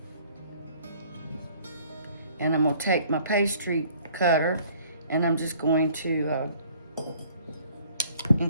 And I'm gonna take my pastry cutter and I'm just going to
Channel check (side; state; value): both; inverted; correlation -0.56